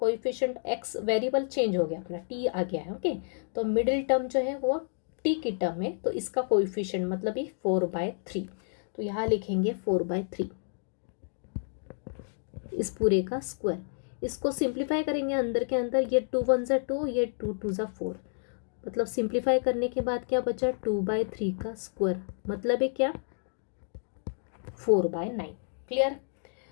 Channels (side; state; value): right; silent; digital silence